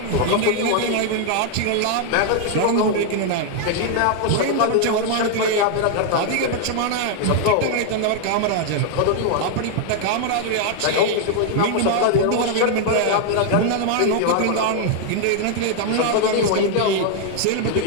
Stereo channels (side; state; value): both; different; correlation 0.00